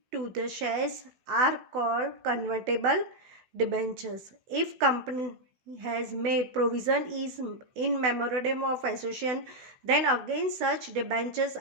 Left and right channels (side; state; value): left; late; 16 ms